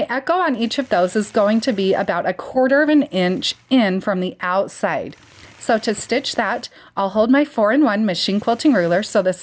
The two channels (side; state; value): both; identical; correlation 1.00